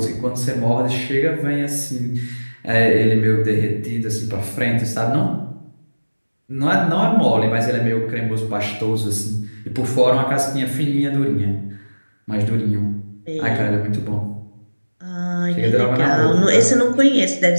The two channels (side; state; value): both; inverted; correlation -1.00